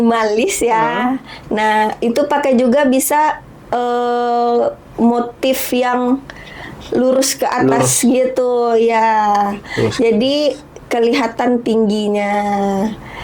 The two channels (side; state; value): both; identical; correlation 1.00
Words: ya. Nah, itu pakai juga bisa motif yang lurus ke atas gitu ya. Jadi kelihatan tingginya.